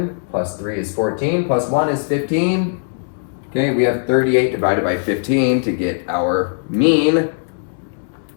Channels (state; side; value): silent; right; 67 dB below the other